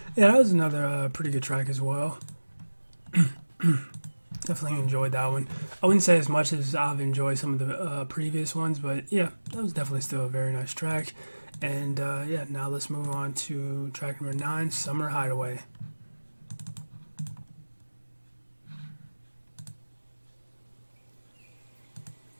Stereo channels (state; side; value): inverted; both; correlation -1.00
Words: Yeah, that was another pretty good track as well. Definitely enjoyed that one. I wouldn't say as much as I've enjoyed some of the previous ones, but yeah, that was definitely still a very nice track. And yeah, now let's move on to track number 9, Summer Hideaway.